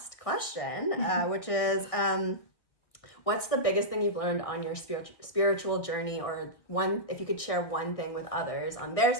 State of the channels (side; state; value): right; late; 1.6 ms